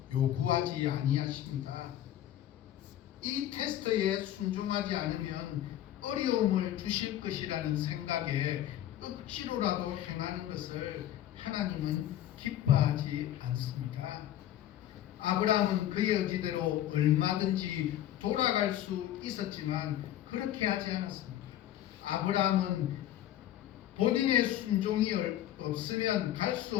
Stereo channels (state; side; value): quieter; right; 12.3 dB